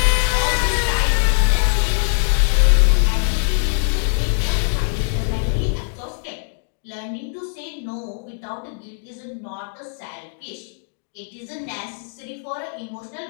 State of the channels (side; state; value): right; silent; 63 dB below the other